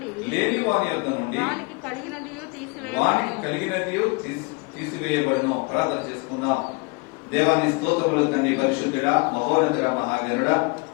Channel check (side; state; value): right; quieter; 28.8 dB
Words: వానికి కలిగినదియు తీసివేయబడును. ప్రార్థన చేసుకుందాం. దేవాని స్తోత్రములు తండ్రి, పరిశుద్ధుడా, మహోన్నతుడా, మహాగణుడా,